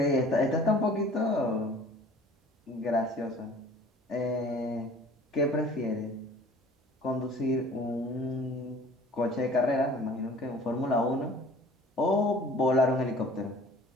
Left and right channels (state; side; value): normal; both; correlation 0.48